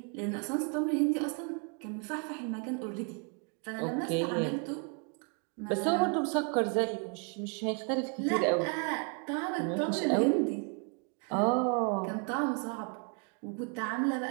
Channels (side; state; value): left; quieter; 37.7 dB